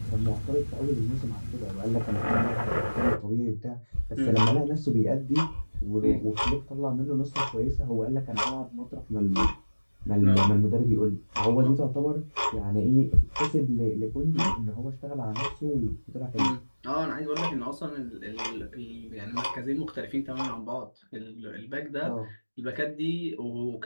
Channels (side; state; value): both; inverted; correlation -1.00